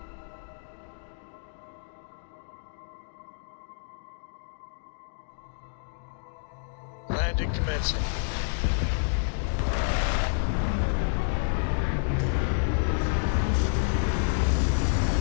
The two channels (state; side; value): silent; right; digital silence